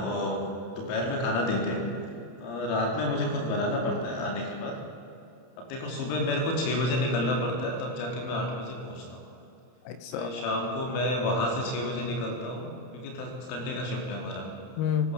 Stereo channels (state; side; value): late; right; 31 ms